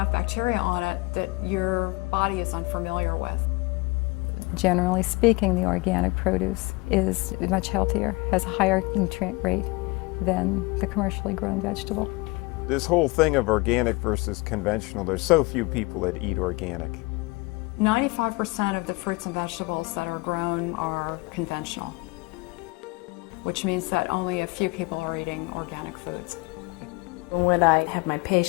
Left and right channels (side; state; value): right; quieter; 25.4 dB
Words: bacteria on it that your body is unfamiliar with. Generally speaking, the organic produce is much healthier, has a higher nutrient rate than the commercially grown vegetable. This whole thing of organic versus conventional, there's so few people that eat organic. 95% of the fruits and vegetables that are grown are conventional, which means that only a few people are eating organic foods. What I have my